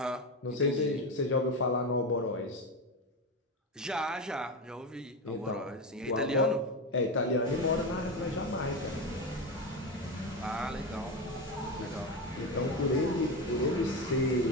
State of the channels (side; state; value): both; normal; correlation 0.17